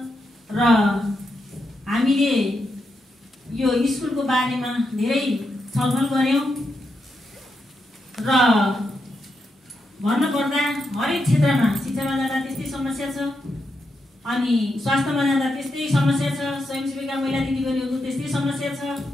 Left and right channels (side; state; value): both; normal; correlation 0.84